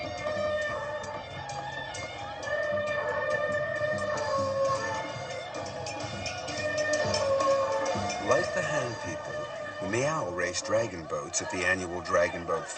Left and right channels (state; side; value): identical; both; correlation 1.00